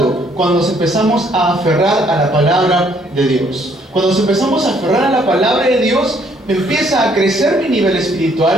Cuando nos empezamos a aferrar a la palabra de Dios. Cuando nos empezamos a aferrar a la palabra de Dios, empieza a crecer mi nivel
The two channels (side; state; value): both; normal; correlation 0.66